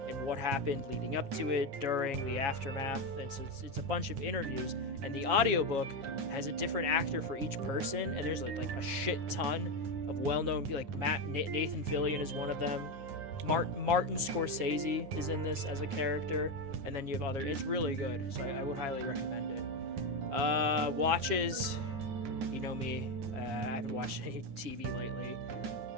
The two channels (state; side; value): late; left; 9.6 ms